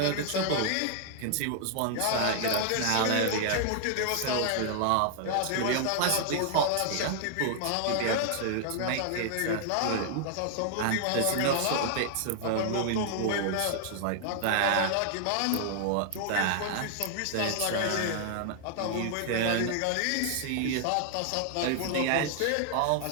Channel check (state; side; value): different; both; correlation 0.00